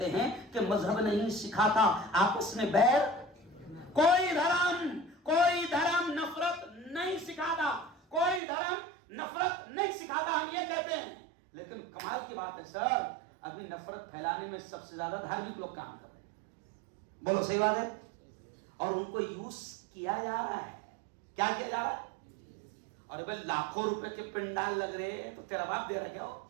हैं कि मजहब नहीं सिखाता आपस में बैर, कोई धर्म नफरत नहीं सिखाता, कोई धर्म नफरत नहीं सिखाता, हम ये कहते हैं। लेकिन कमाल की बात है सर, अभी नफरत फैलाने में सबसे ज्यादा धार्मिक लोग काम कर रहे हैं, बोलो सही बात है, और उनको यूज किया जा रहा है। क्या किया जा रहा है? और भाई लाखों रुपए के पिंडाल लग रहे हैं तो तेरा बाप दे रहा क्या हो?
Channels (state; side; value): drops out; left; at 8.4 s